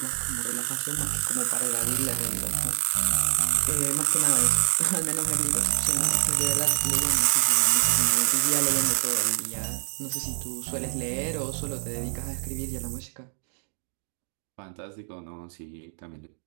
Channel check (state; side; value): silent; left; digital silence